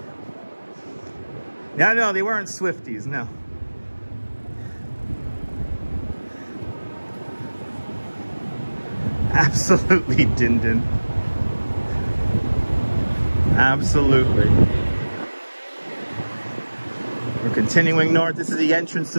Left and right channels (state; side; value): inverted; both; correlation -1.00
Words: Yeah, no, they weren't Swifties, no. Absolutely, Din Din. Absolutely. We're continuing north. This is the entrance